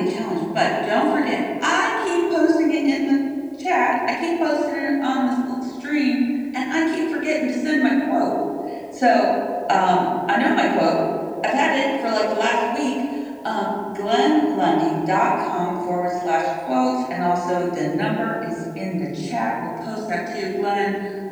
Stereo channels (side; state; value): both; identical; correlation 1.00